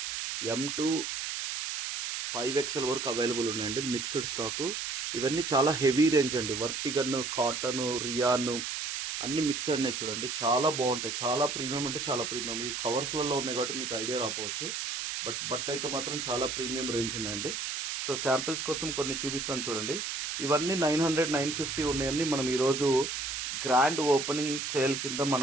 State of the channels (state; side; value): noise; right; hiss, 3 dB below the sound